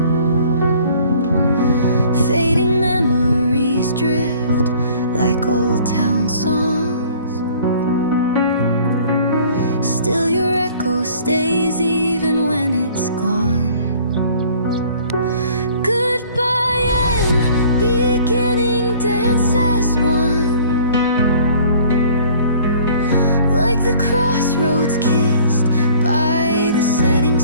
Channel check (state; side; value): inverted; both; correlation -0.52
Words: Fading memories drift like old town songs. Still your echo stays even when it's gone. Goodbye and beginning dance as one, like the crossroads kissed by the setting